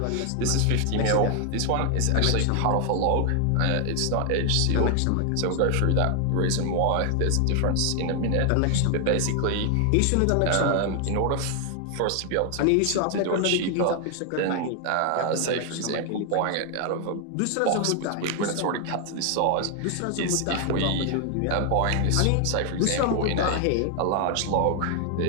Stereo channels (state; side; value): different; both; correlation 0.00